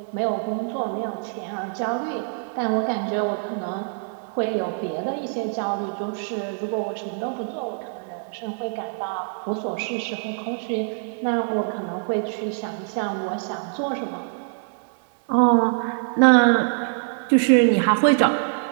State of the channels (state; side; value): silent; left; 60 dB below the other